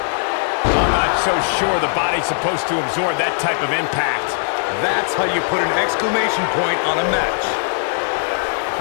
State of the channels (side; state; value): right; silent; 66 dB below the other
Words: I'm not so sure the body's supposed to absorb that type of impact. That's how you put an exclamation point on a match.